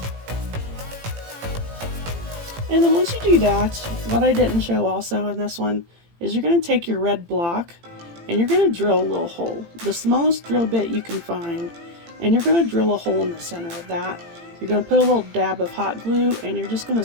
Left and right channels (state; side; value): late; left; 18 ms